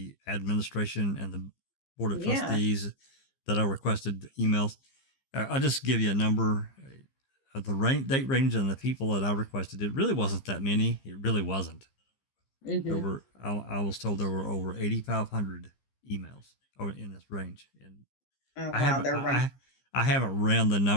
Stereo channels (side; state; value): right; late; 15 ms